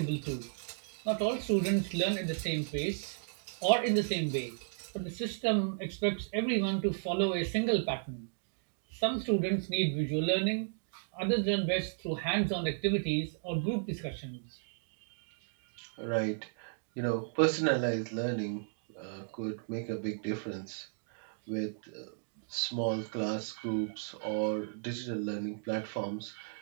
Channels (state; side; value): silent; left; digital silence